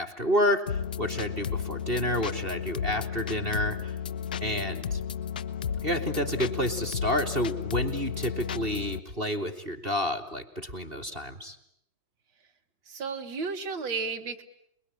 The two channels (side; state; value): left; late; 2.7 ms